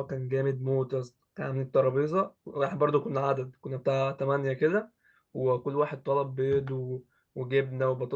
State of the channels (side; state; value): both; identical; correlation 1.00